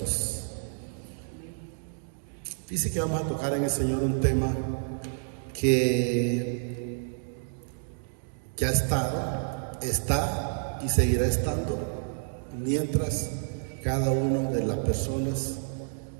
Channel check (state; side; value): silent; left; digital silence